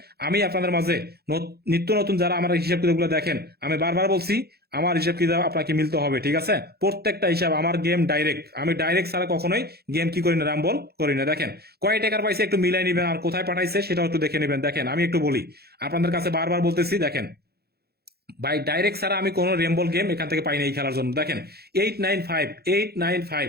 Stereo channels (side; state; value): left; late; 0.46 ms